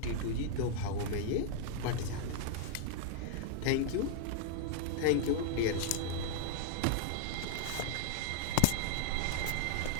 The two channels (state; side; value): different; both; correlation 0.00